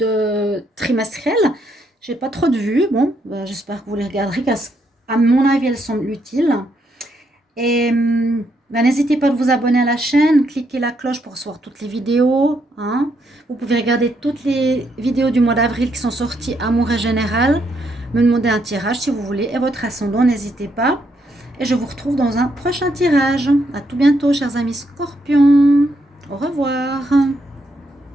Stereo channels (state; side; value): normal; both; correlation 0.76